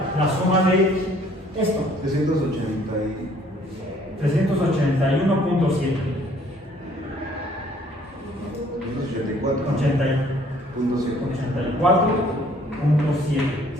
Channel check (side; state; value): both; normal; correlation 0.59